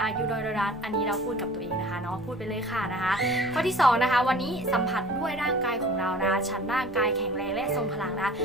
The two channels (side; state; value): right; noise; rumble, 22 dB below the sound